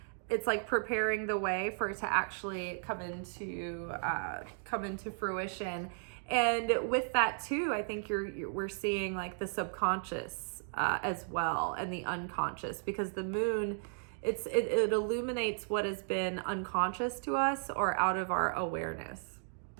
it's like preparing the way for it to actually come into fruition. And with that too, I think we're seeing like the subconscious as well, and the unconscious, because the moon, it illuminates what has been unconscious to us or out of our awareness.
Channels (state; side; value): silent; left; digital silence